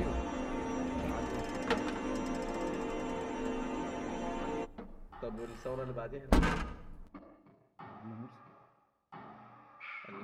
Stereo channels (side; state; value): both; identical; correlation 1.00